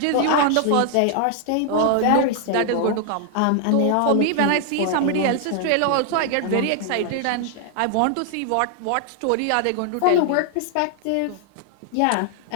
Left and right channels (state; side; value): different; both; correlation 0.00